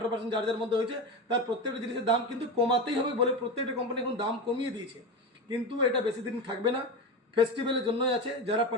যার যার মধ্যে হয়েছে, তার প্রত্যেকটা জিনিসের দাম কিন্তু কমাতেই হবে বলে প্রত্যেকটা কোম্পানি এখন দাম কমিয়ে দিয়েছে। কিন্তু এটা বেশি দিন থাকবে না, ফেস্টিভ্যালের জন্যই আছে। যারা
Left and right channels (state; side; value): normal; both; correlation 0.21